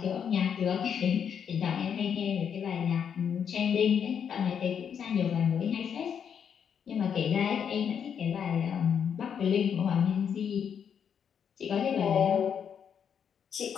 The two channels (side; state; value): right; quieter; 7.8 dB